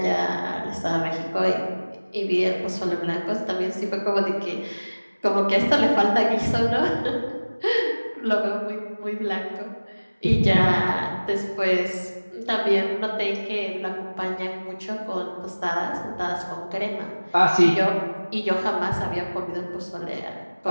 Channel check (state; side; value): inverted; both; correlation -1.00